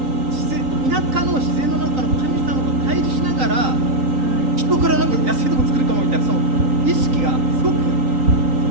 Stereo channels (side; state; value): left; late; 3.9 ms